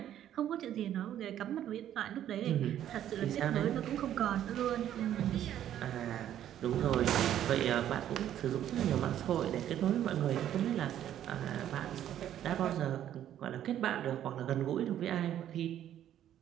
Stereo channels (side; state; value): left; quieter; 11.1 dB